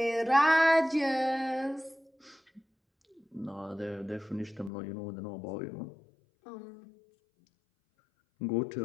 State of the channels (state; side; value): drops out; right; at 4.7 s